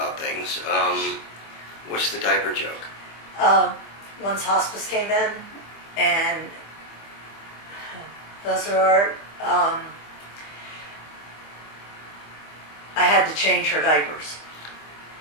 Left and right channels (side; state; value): right; late; 25 ms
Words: things. What's the diaper joke? Once hospice came in, and those are, I had to change her diapers.